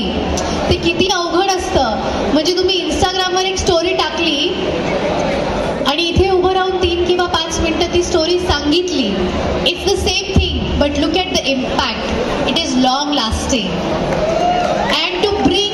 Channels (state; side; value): identical; both; correlation 1.00